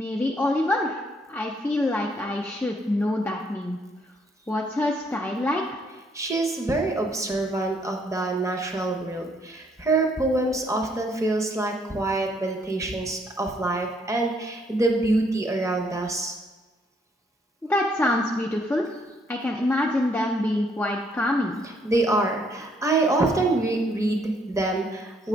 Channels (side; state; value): both; normal; correlation 0.69